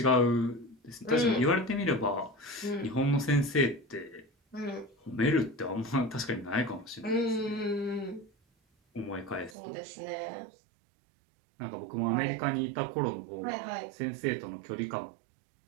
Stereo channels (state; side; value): drops out; left; at 9.6 s